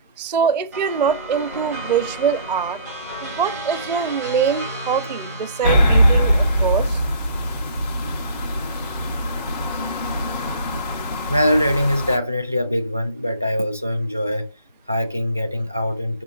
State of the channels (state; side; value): inverted; both; correlation -0.54